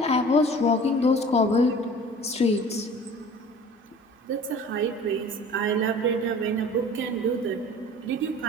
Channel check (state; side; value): normal; both; correlation 0.44